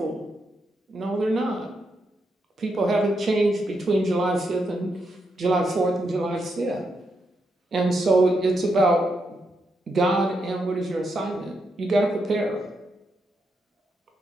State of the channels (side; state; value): both; normal; correlation 0.82